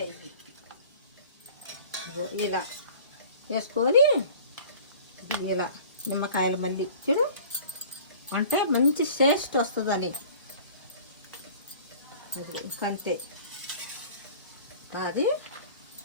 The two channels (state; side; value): inverted; both; correlation -0.46